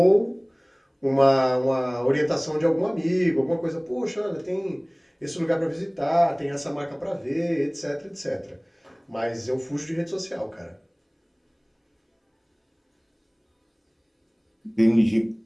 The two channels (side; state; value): both; identical; correlation 1.00